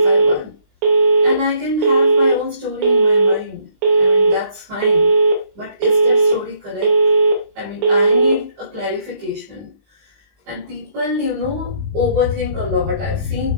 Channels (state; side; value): late; left; 20 ms